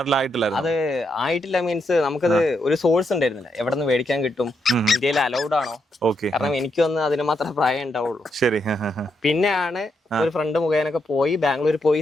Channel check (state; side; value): normal; both; correlation 0.80